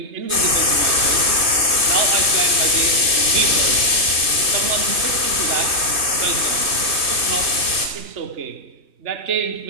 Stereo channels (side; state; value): left; late; 3.2 ms